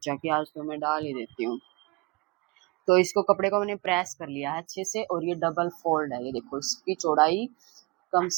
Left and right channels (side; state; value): left; quieter; 24.5 dB